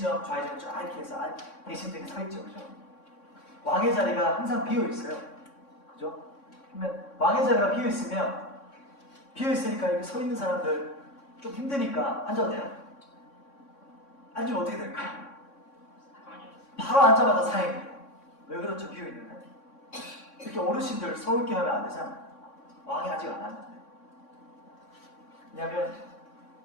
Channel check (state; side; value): late; right; 3.6 ms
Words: 좌의정 쫙 이렇게 해서 대신들이 서 있죠. 그죠? 왕의 자리가 항상 비어 있어요. 그죠? 그러면 왕의 자리가 비어 있으니까 여기 서 있는 사람들 좀 힘드니까 앉아도 돼요? 앉으면 어떻게 될까요? 바로 앉자마자 사행이에요. 왜 그렇죠? 비어 있는데. 이렇게 어르신들 서울게 하면 안 되잖아요. 왕이 아직 안 왔는데. 왜냐하면